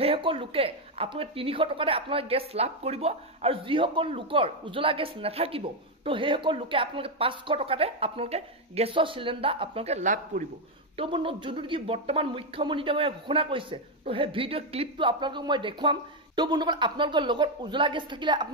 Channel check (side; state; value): both; normal; correlation 0.04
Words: লোকে আপোনালোকে 300 টকাতে আপোনালোকে গেছ লাভ কৰিব। আৰু যিসকল লোকৰ উজ্জ্বলা গেছ নাথাকিব, তো সেইসকল লোকে আপোনালোকে 500 টকাতে আপোনালোকে গেছৰ চিলিণ্ডাৰ আপোনালোকে লাভ কৰিব। তো বন্ধুসকল যোনটো নেকি বৰ্তমান মুখ্যমন্ত্ৰী ডাঙৰীয়াই ঘোষণা কৰিছে, তো সেই ভিডিঅ' ক্লিপটো আপোনালোকক মই দেখুৱাম। তো বন্ধুসকল আপোনালোকৰ লগত উজ্জ্বলা গেছ থাকিলে